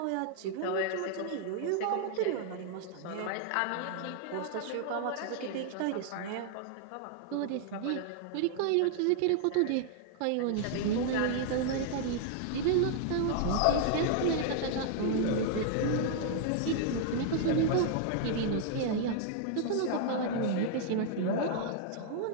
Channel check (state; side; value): different; both; correlation 0.00